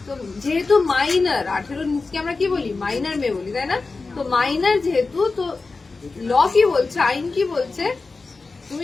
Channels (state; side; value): quieter; right; 3.9 dB